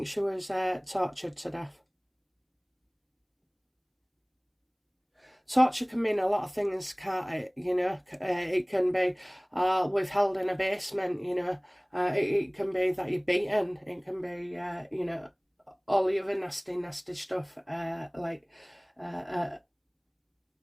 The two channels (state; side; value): identical; both; correlation 1.00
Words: she was tortured to death. torture can mean a lot of things, can't it? You know, it can be withheld in a basement. You know, it can be that you're beaten. It can be you know, all the other nasty stuff, like